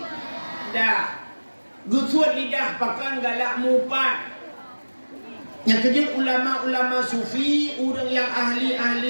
Gusut lidah pakan galak mupat. Yang kejut ulama-ulama sufi, orang yang ahli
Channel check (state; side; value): inverted; both; correlation -1.00